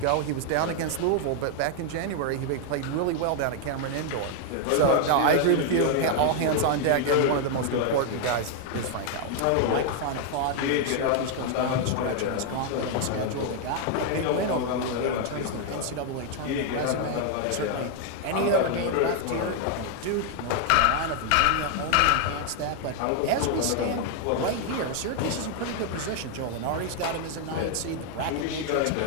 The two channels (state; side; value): different; both; correlation 0.00